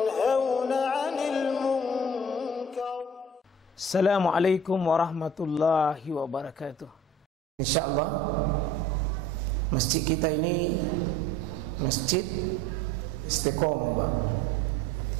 'anil munkar. Assalamualaikum warahmatullahi wabarakatuh. Insyaallah masjid kita ini Masjid Istiqomah, Pak.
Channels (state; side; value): normal; both; correlation 0.48